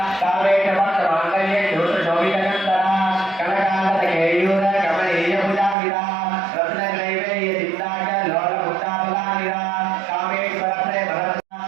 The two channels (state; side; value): drops out; left; at 5.8 s